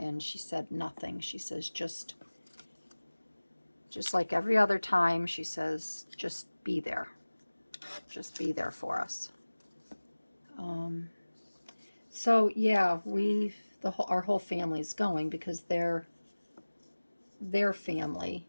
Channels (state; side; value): inverted; both; correlation -1.00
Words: she said nothing. She says, just like every other time, she says, just be there. Just be there for us. So yeah, our whole family's going, because their family